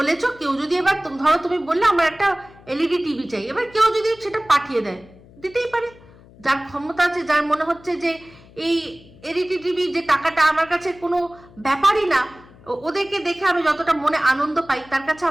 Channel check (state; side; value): noise; left; hum, 24 dB below the sound